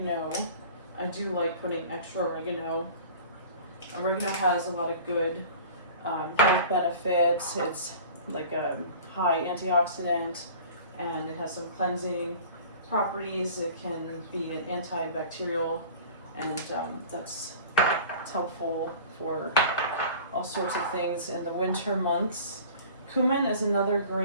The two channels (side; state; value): both; inverted; correlation -0.42